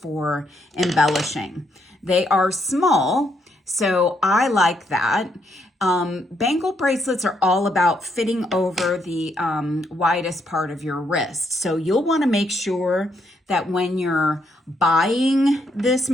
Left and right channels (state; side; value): normal; both; correlation 0.75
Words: embellishing. They are small, so I like that. Bangle bracelets are all about fitting over the widest part of your wrist. So you'll want to make sure that when you're buying this